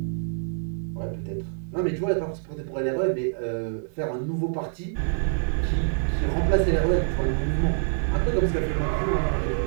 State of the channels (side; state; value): left; silent; digital silence